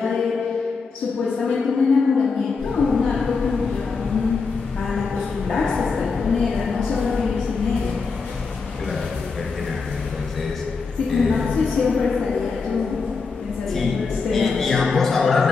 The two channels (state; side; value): quieter; right; 4.7 dB